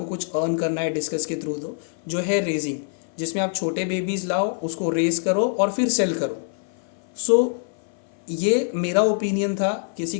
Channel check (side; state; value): right; silent; 59 dB below the other